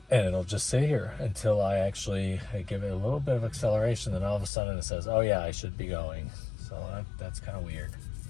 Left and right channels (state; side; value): drops out; right; at 4.5 s